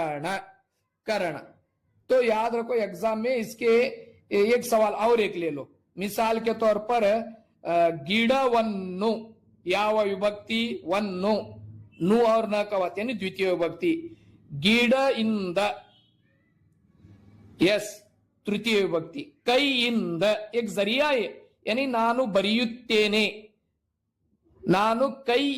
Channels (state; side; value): identical; both; correlation 1.00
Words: करण तो याद रखो एग्जाम में इसके एक सवाल और एक ले लो. मिसाल के तौर पर गिड़वन्नु ಯಾವ विभक्ति, वन्नु, नु और न का वत यानी द्वितीय विभक्ति. गिड़ इंद, यस तृतीय विभक्ति. कई इंद एक जरिया है यानी ನಾನು ಬರೆಯುತ್ತೇನೆ, ನಾನು